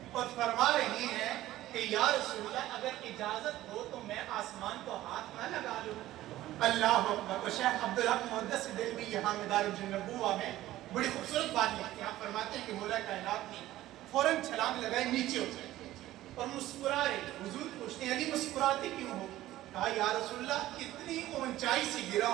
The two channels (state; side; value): quieter; left; 15.1 dB